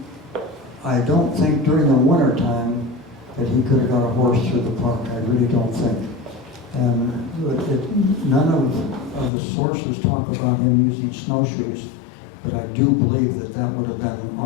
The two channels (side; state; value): right; drops out; at 9.3 s